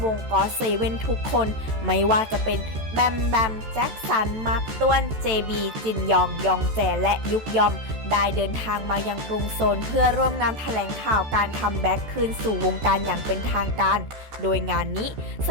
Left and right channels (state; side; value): late; left; 14 ms